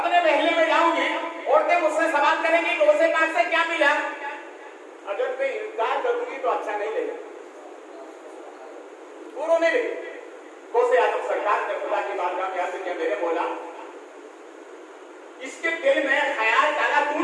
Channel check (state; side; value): identical; both; correlation 1.00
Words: महल्ले में जाऊंगी, औरतें मुझसे सवाल करेंगी कि उसे पास से क्या मिला, अगर मैं इनकार करूंगी तो अच्छा नहीं लगेगा। वो रोने लगी। गौसे आदम सरकार ने खुदा की बारगाह में आके मेरे बोला, इसके दिल में ख्याल डाला